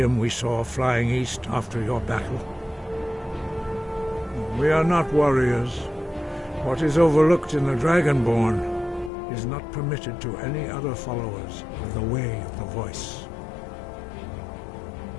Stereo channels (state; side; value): drops out; right; at 9.1 s